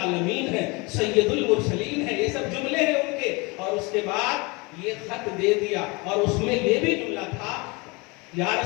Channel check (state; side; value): quieter; right; 27.0 dB